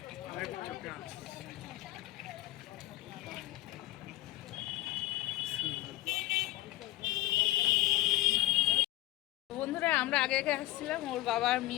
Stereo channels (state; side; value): quieter; right; 17.3 dB